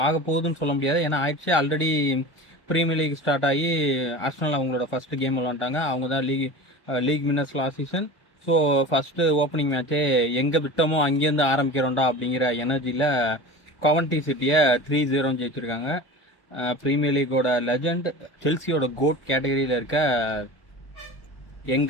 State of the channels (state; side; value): late; right; 1.4 ms